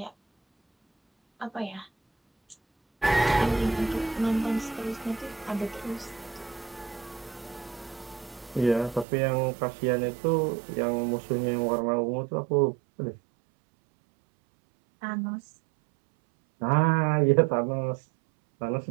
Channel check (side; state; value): left; drops out; at 9.1 s